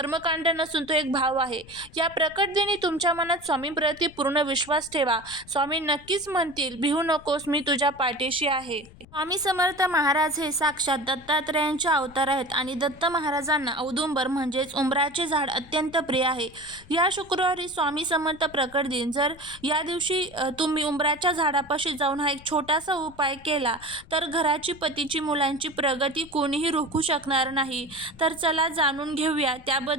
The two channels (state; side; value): noise; left; rumble, 22 dB below the sound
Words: नसून तो एक भाव आहे. या प्रकट दिनी तुमच्या मनात स्वामींप्रती पूर्ण विश्वास विश्वास ठेवा. स्वामी नक्कीच म्हणतील, भिवू नकोस, मी तुझ्या पाठीशी आहे. स्वामी समर्थ महाराज हे साक्षात दत्तात्रेयांचे अवतार आहेत आणि दत्त महाराजांना औदुंबर म्हणजेच उंबराचे झाड अत्यंत प्रिय आहे. या शुक्रवारी स्वामी समर्थ प्रकट दिन. जर या दिवशी तुम्ही उंबराच्या झाडापाशी जाऊन हा एक छोटासा उपाय केला तर घराची, पतीची, मुलांची प्रगती कोणीही रोखू शकणार नाही. तर चला जाणून घेऊया